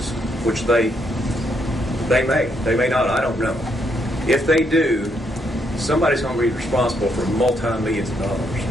which they may not, I don't know. If they do, somebody's going to be responsible for multi-millions of dollars.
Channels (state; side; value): normal; both; correlation 0.75